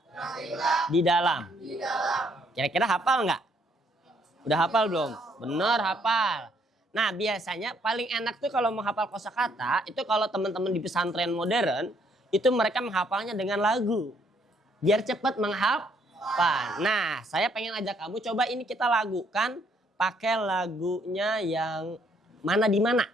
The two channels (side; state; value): both; normal; correlation 0.68